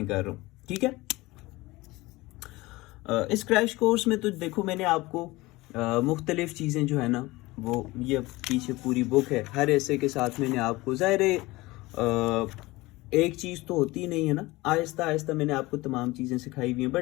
कर रहा हूँ, ठीक है। इस क्रैश कोर्स में तो देखो मैंने आपको मुख्तलिफ चीज़ें जो है ना, वो ये पीछे पूरी बुक है, हर ऐसे के साथ मैंने आपको ज़ाहिर एक चीज़ तो होती नहीं है ना, आहिस्ता आहिस्ता मैंने आपको तमाम चीज़ें सिखाई हुई हैं,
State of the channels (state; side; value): quieter; right; 20.7 dB